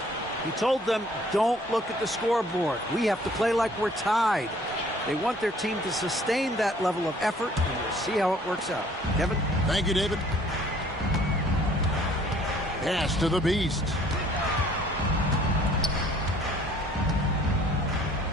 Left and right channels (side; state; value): both; normal; correlation 0.57